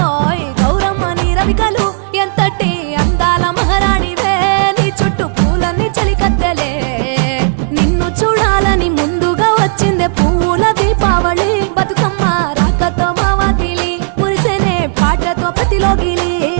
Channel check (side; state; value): left; silent; 72 dB below the other